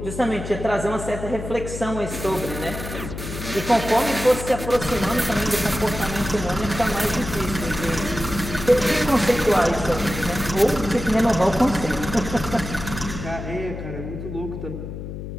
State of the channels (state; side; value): noise; left; hum, 8 dB below the sound